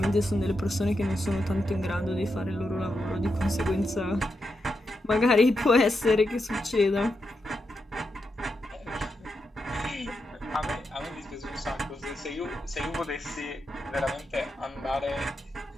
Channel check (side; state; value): both; normal; correlation 0.85